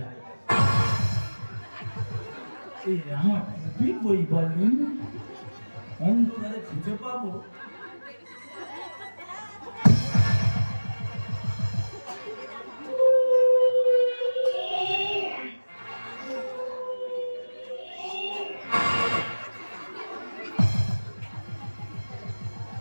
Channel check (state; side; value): inverted; both; correlation -1.00